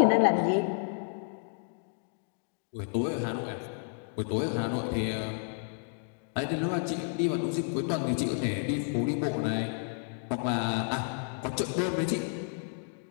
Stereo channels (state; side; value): silent; right; 57 dB below the other